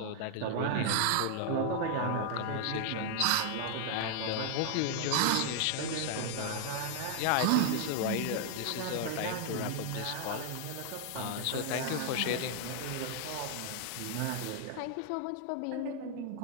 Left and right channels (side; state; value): both; different; correlation 0.00